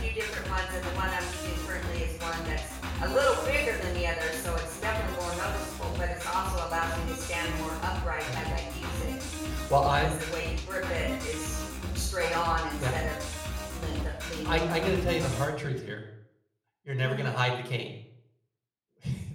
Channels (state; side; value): identical; both; correlation 1.00